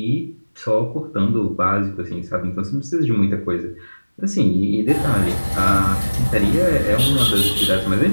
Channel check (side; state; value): both; inverted; correlation -1.00